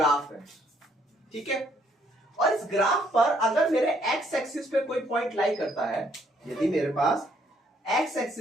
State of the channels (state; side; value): normal; both; correlation 0.67